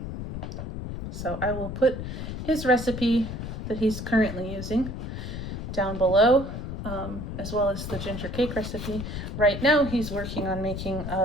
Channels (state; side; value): noise; left; rumble, 6 dB below the sound